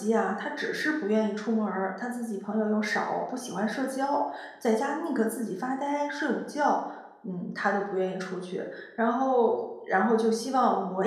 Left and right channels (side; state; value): both; identical; correlation 1.00